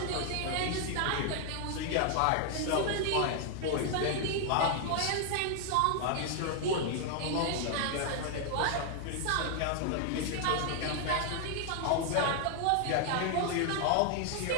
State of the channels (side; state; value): both; different; correlation 0.00